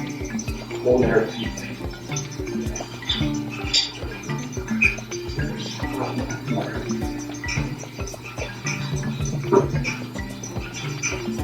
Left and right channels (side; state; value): both; identical; correlation 1.00